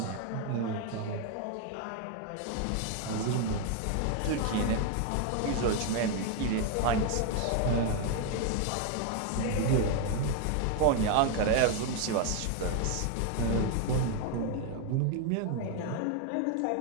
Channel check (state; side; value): different; both; correlation 0.01